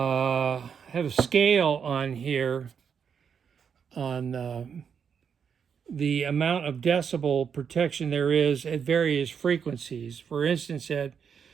scale on here on the amount of decibel protection there is at various frequencies. For instance, at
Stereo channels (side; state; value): left; quieter; 7.0 dB